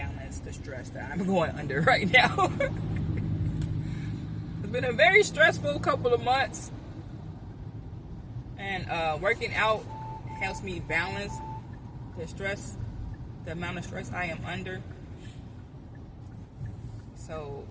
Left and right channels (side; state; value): both; identical; correlation 1.00